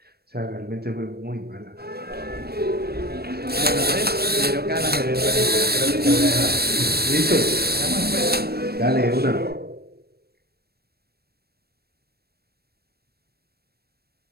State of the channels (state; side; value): late; left; 0.46 ms